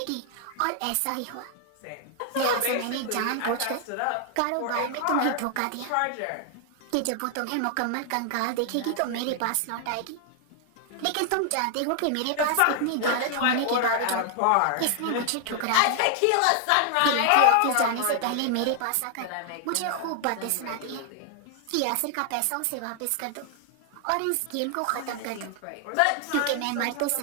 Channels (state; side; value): different; both; correlation 0.00